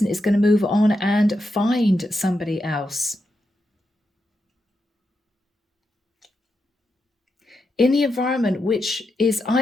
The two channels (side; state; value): both; normal; correlation 0.86